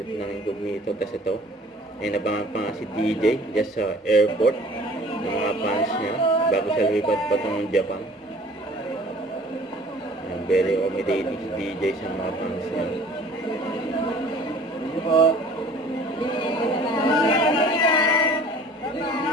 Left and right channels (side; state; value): both; normal; correlation 0.49